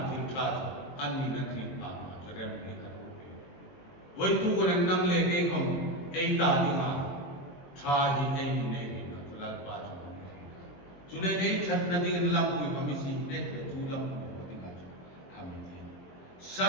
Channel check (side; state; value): right; late; 21 ms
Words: Tintat Anni Nakri Ama Jerem Hikarupi Waitu Kuran Nang Lege Hom Eita Dima Trahi Eni Negi Natural Bajo Zulay Eitat Nading Lampu Pamisi Net Tulam Padigajo Amiti